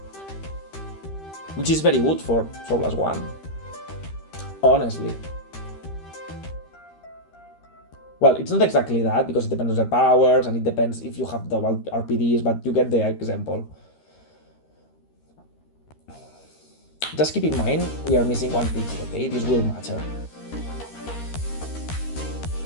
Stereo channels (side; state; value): right; late; 13 ms